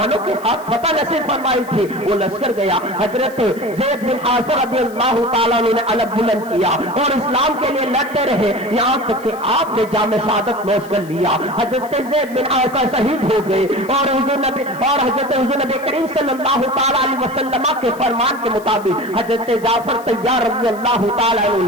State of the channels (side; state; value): left; noise; hiss, 23 dB below the sound